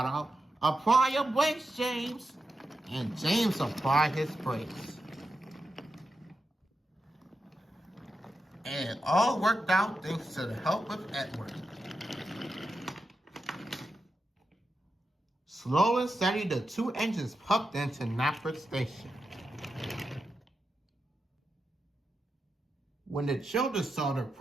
out, "Apply your brakes, James!" And James applied his brakes. And it all worked out thanks to the help of Edward. Slow and steady, the two engines puffed into Knapford Station. When the children saw their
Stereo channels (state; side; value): normal; both; correlation 0.88